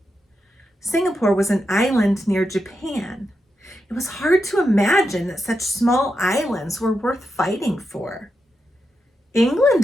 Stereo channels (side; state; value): both; normal; correlation 0.86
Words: Singapore was an island near Japan. It was hard to imagine that such small islands were worth fighting for.